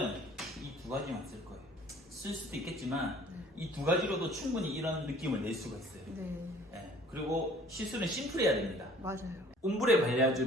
이 두 가지만 쓸 거예요. 쓸 수도 있겠지만 네. 이 두 가지로도 충분히 이런 느낌을 낼 수가 있어요. 네. 네. 그리고 시술은 심플해야 됩니다. 맞아요. 옴브레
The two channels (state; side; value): normal; both; correlation 0.52